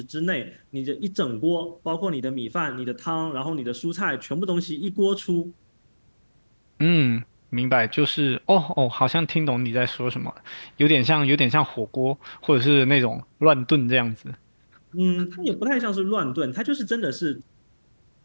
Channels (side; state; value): both; inverted; correlation -1.00